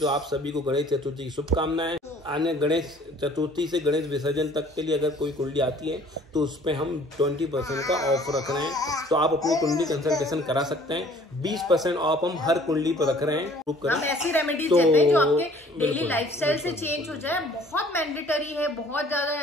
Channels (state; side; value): normal; both; correlation 0.54